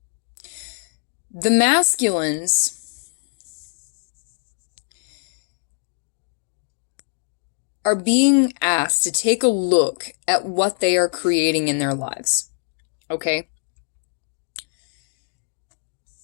The masculines are being asked to take a look at what they are creating in their lives. Okay?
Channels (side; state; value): right; silent; digital silence